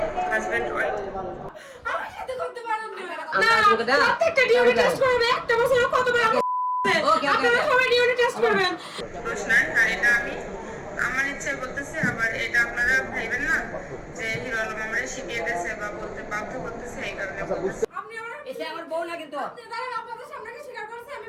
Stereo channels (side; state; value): both; identical; correlation 1.00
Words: হাজব্যান্ড ওয়াইফ। আমার সাথে করতে পারেন না, প্রত্যেকটা ডিউটি টেস্ট করবে, একটা বছরে কতবার আপনারা সবাই ডিউটি টেস্ট করবেন। দোষ নাই, আর এটা আমি আমার ইচ্ছায় বলতেছি, আবার এটা আপনারা ভাইবেন না যে হিরো আলম আমারে শিখিয়ে দিয়েছে বা বলতে বাধ্য করতেছে, এই কারণে বলতেছি। আপনি আমার এসে আমার বউ না কিন্তু। আপনি দাঁড়ান, আপনাদের সামনে কি স্বীকার করছে আমি